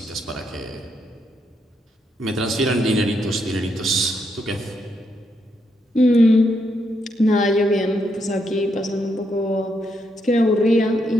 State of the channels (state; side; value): normal; both; correlation 0.78